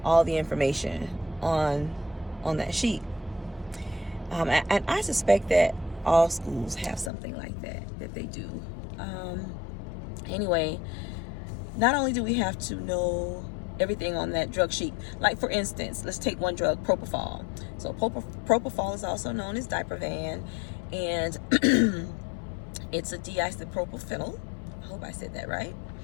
all the information on that sheet. And I suspect that all schools have something like that they do. Anyway, not only do we have to know everything on that drug sheet, like for instance, let's take one drug, propofol. So propofol is also known as Diprovan, and it's a diisopropyl. I hope I said that right.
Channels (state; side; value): drops out; right; at 7.1 s